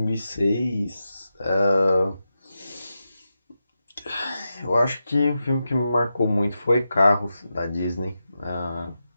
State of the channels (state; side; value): inverted; both; correlation -0.90